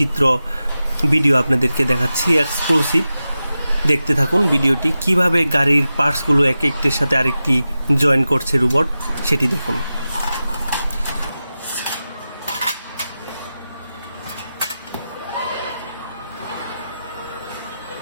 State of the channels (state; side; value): inverted; both; correlation -0.93